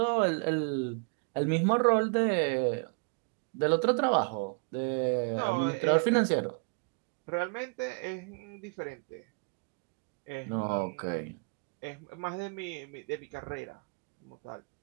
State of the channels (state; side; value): quieter; left; 37.0 dB